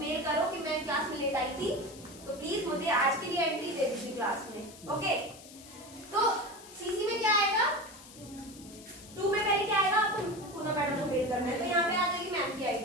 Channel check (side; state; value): left; noise; hiss, 18 dB below the sound